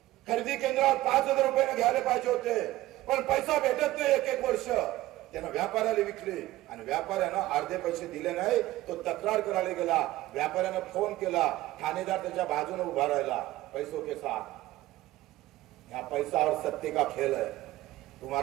खरेदी केंद्रावर 5000 रुपयाने घ्यायला पाहिजे होते पण पैसा भेटत नाही. एक वर्ष त्यानं व्यापाऱ्याला विकले आणि व्यापाऱ्यानं अर्धे पैसे दिले नाही. तो तक्रार करायला गेला. व्यापाऱ्यानं फोन केला. ठाणेदार त्याच्या बाजूने उभा राहिला पैसों के साथ. या पैसा और सत्ते का खेल है.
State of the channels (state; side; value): quieter; left; 16.6 dB